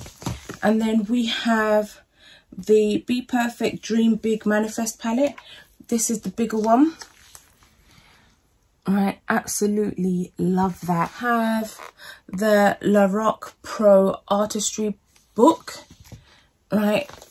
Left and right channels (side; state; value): both; identical; correlation 1.00